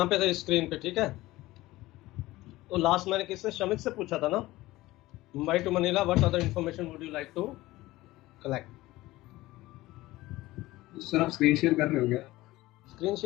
पे थे स्क्रीन पे, ठीक है। तो लास्ट मैंने किससे, शमित से पूछा था ना, Mumbai to Manila what other information would you like to collect. Sir आप स्क्रीन शेयर कर रहे हो क्या? स्क्रीन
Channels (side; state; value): right; quieter; 18.1 dB